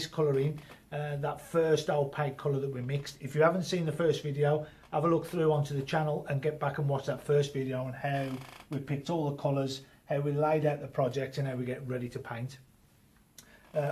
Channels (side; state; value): both; identical; correlation 1.00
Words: colour in, that first opaque colour that we mixed. If you haven't seen the first video, have a look through onto the channel and get back and watch that first video on how we picked all the colours, how we laid out the project and how we get ready to paint.